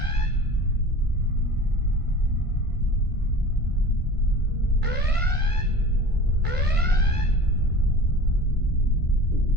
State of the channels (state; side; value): late; right; 1.5 ms